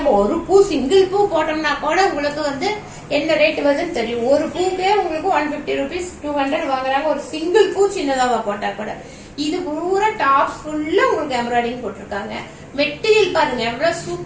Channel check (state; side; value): identical; both; correlation 1.00